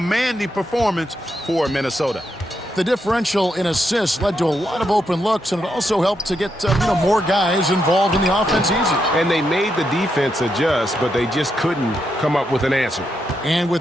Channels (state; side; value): normal; both; correlation 0.82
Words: performance for Minnesota. The differential in assists led to a lot of open looks, and it also helped to get more guys involved in the offense easy. And they made the defense adjust, but they just couldn't come up with an answer. And